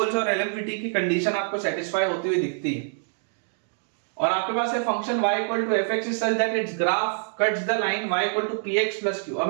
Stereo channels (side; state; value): left; silent; digital silence